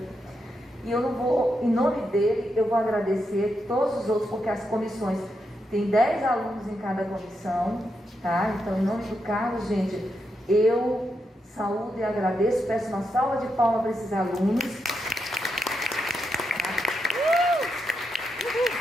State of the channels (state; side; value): normal; both; correlation 0.83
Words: E eu não vou, em nome dele, eu vou agradecer todos os outros, porque as comissões, tem 10 alunos em cada comissão, tá? Então, em nome do Carlos, gente, eu saúdo e agradeço, peço uma salva de palmas para esses alunos.